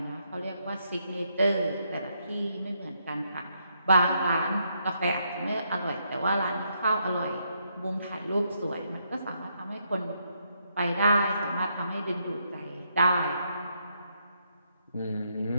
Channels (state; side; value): inverted; both; correlation -0.76